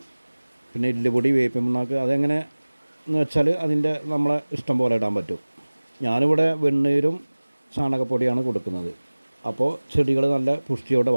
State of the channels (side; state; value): both; inverted; correlation -1.00